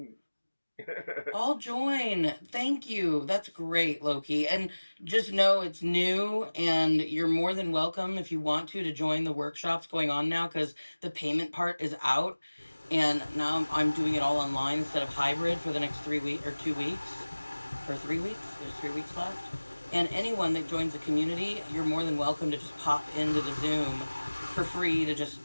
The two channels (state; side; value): inverted; both; correlation -1.00